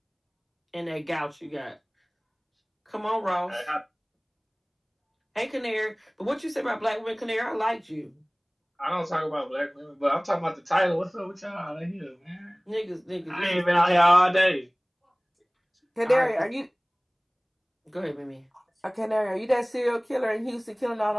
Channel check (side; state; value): both; identical; correlation 1.00